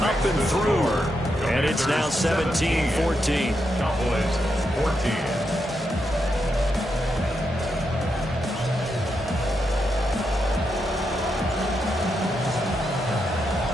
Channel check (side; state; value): both; normal; correlation 0.83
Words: up and through. And it's now 17-14. Cowboys 14.